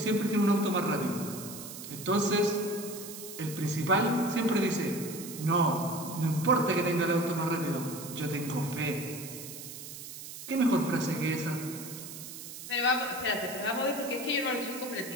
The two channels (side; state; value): right; noise; hiss, 11 dB below the sound